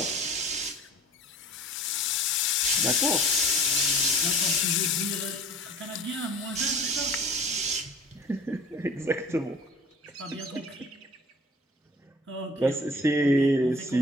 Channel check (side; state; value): both; normal; correlation 0.45